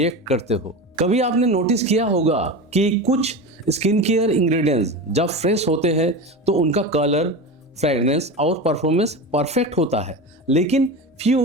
करते हो। कभी आपने नोटिस किया होगा कि कुछ स्किन केयर इंग्रेडिएंट्स जब फ्रेश होते हैं तो उनका कलर, फ्रेगनेंस और परफॉर्मेंस परफेक्ट होता है, लेकिन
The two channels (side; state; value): both; normal; correlation 0.26